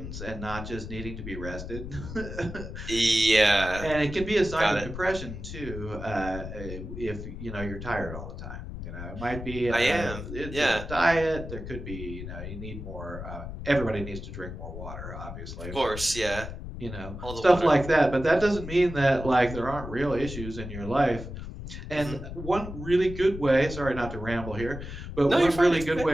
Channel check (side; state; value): left; noise; rumble, 9 dB below the sound